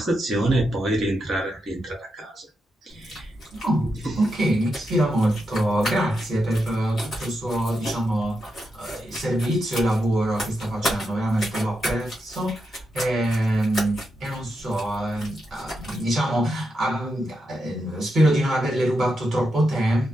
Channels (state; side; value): normal; both; correlation 0.85